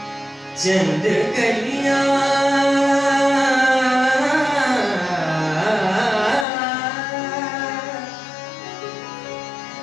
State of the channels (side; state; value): right; drops out; at 6.5 s